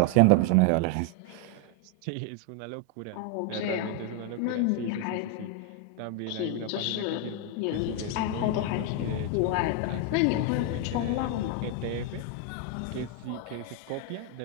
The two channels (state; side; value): different; both; correlation 0.01